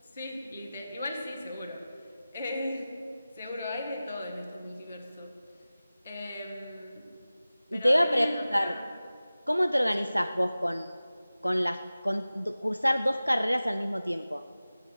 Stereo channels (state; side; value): inverted; both; correlation -0.96